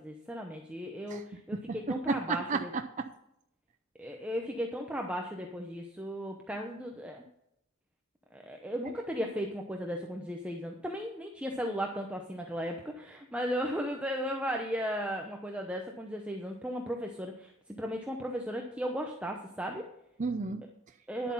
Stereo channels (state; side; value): normal; both; correlation 0.62